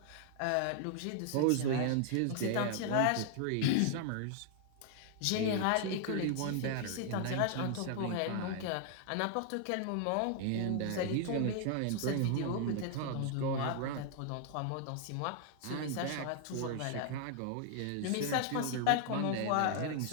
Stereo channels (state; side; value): different; both; correlation 0.00